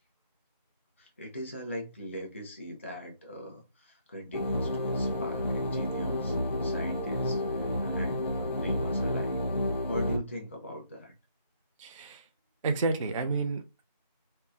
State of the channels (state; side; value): inverted; both; correlation -0.69